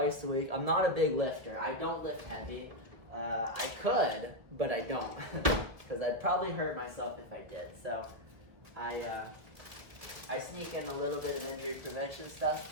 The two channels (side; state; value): left; late; 1.9 ms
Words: a week. I'm not a big lifter. I don't lift heavy. I could, but I don't, because I'd probably hurt myself if I did. So I sneak in a little bit of injury prevention stuff